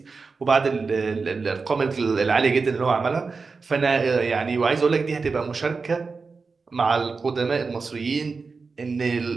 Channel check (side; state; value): left; quieter; 4.5 dB